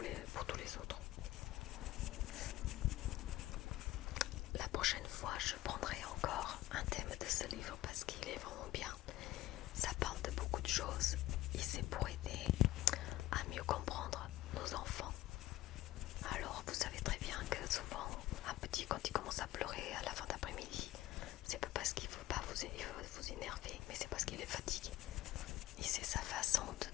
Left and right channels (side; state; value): right; quieter; 15.9 dB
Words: pour tous les autres. La prochaine fois, je prendrai encore un thème de ce livre parce qu'il est vraiment bien. Ça parle de beaucoup de choses et c'est pour aider à mieux comprendre nos enfants. Alors, vous savez très bien que souvent, un petit, quand il commence à pleurer à la fin d'après-midi, c'est pas parce qu'il veut pas vous énerver, mais c'est parce qu'il est fatigué. Et c'est sa façon